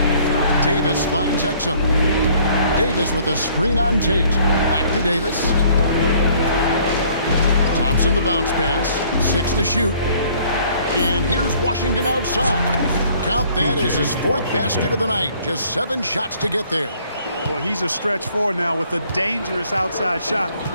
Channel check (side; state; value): both; inverted; correlation -0.59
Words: Davis finds Exum. Davis with a screen on Tate. Back to Davis. Thompson the bounce pass. 6 to shoot. And here's Washington outside. Count that as his 4th basket of the night. Just 7 shots to get there. Boy, he's a stretch 4 now with a dangerous outside shot.